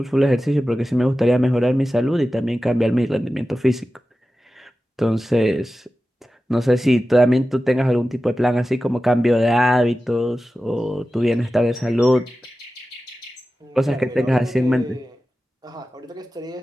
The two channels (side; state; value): both; normal; correlation 0.94